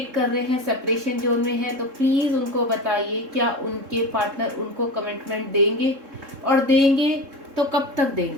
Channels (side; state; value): left; late; 3.7 ms